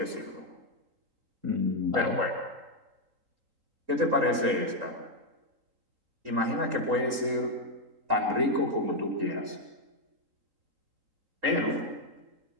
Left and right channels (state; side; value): late; left; 3.8 ms